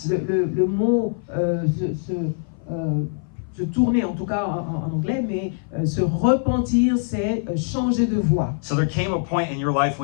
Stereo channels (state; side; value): silent; right; 58 dB below the other